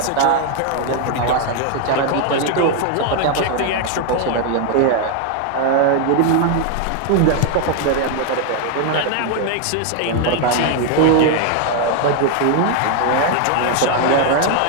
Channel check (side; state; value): both; different; correlation 0.00